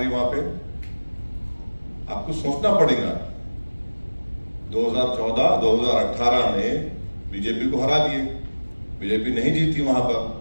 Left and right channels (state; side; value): inverted; both; correlation -1.00